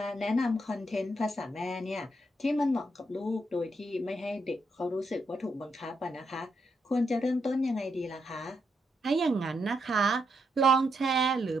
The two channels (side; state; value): both; normal; correlation 0.80